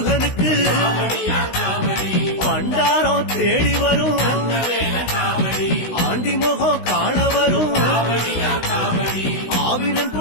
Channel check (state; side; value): late; right; 16 ms